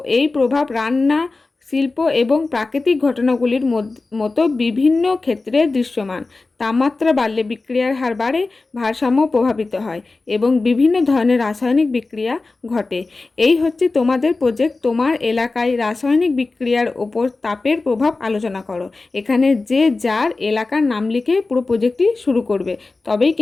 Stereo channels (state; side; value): quieter; right; 3.6 dB